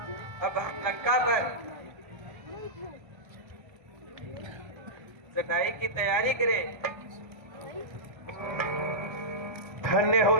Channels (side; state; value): left; late; 1.3 ms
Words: अब हम लंका पर चढ़ाई की तैयारी करें। धन्य हो